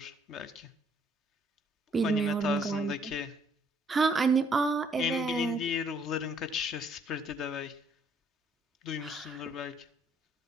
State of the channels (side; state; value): both; normal; correlation 0.66